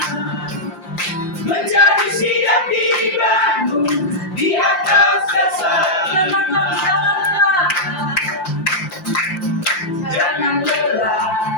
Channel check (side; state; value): right; late; 5.7 ms